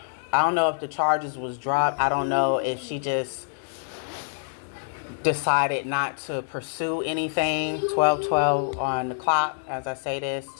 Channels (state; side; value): silent; right; digital silence